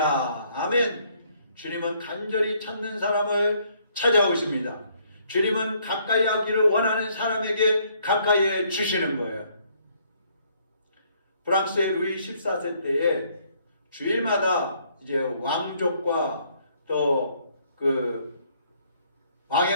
아멘. 주님은 간절히 찾는 사람을 찾아오십니다. 주님은 가까이 하기를 원하는 사람에게 가까이 해 주시는 거예요. 프랑스의 루이 14세 때에 주일마다 이제 왕족과 또 그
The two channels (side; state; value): both; inverted; correlation -0.67